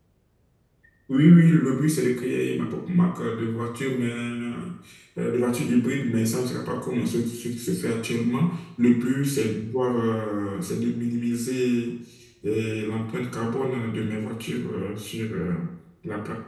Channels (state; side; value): identical; both; correlation 1.00